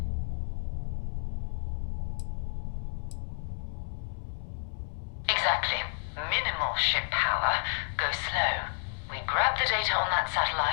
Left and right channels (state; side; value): silent; right; 57 dB below the other